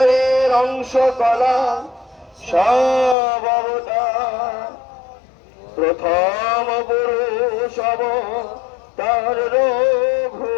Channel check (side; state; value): right; drops out; at 3.2 s